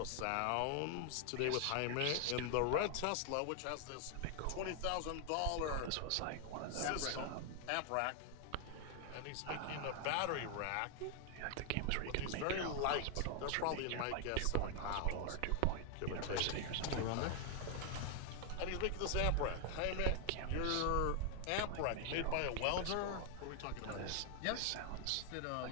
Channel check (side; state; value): both; different; correlation 0.00